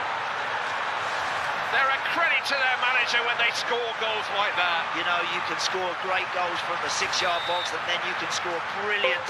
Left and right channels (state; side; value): identical; both; correlation 1.00